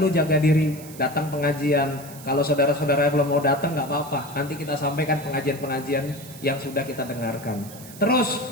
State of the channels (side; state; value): right; noise; hiss, 17 dB below the sound